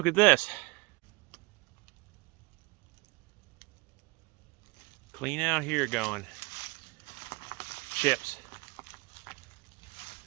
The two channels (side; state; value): left; quieter; 25.3 dB